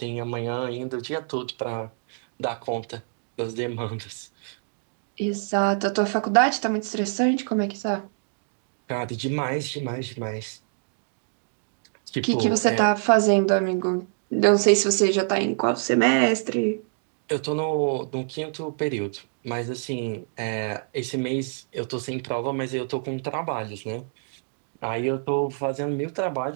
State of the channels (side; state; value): left; silent; digital silence